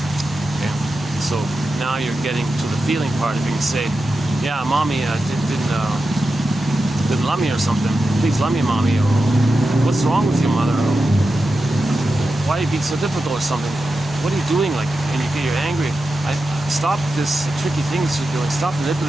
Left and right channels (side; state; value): both; normal; correlation 0.90